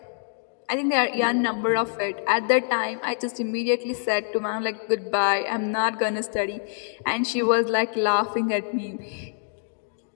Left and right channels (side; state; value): right; silent; digital silence